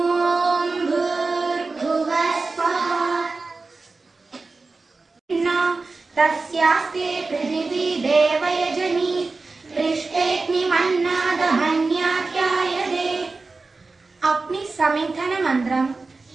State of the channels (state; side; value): quieter; left; 3.8 dB